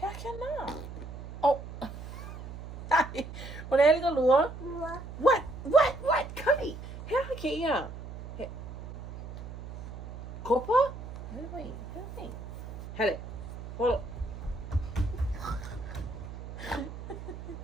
na. Oh. Hi. Wala ka lua? What? Kali. Heck kaya. Kopa? Wait. Hele. Hold up.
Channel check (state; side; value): noise; right; hum, 10 dB below the sound